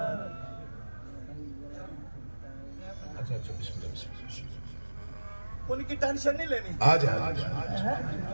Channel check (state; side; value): inverted; both; correlation -1.00